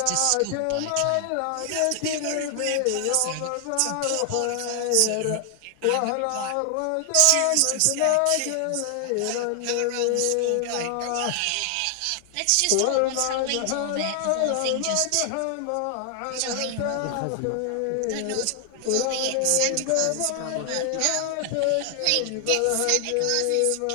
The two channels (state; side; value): different; both; correlation 0.00